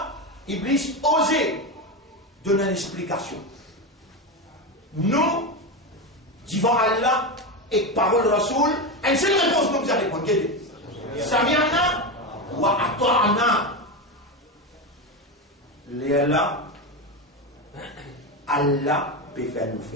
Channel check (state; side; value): normal; both; correlation 0.16